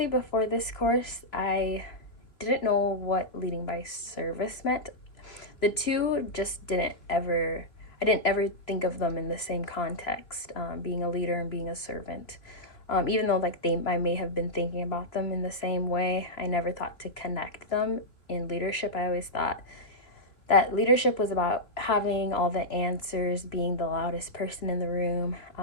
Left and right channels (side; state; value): right; late; 3.0 ms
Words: before this course, I didn't know what leading by service meant. The two just I didn't ever think of them in the same context, being a leader and being a servant. Even though I may have been thinking about them in the same way, I never thought to connect them in leadership. I always thought that leadership was about having all the answers, being the loudest person in the room,